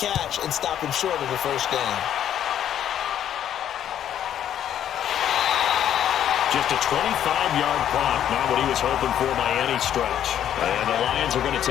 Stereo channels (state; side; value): quieter; right; 10.3 dB